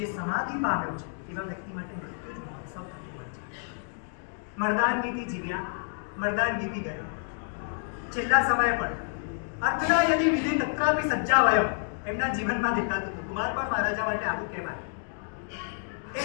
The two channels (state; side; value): silent; right; 58 dB below the other